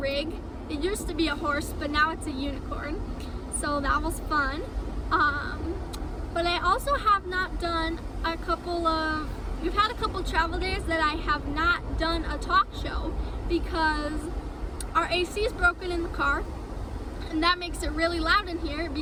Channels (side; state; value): both; identical; correlation 1.00